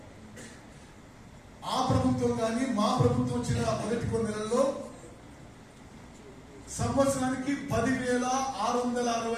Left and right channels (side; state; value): both; identical; correlation 1.00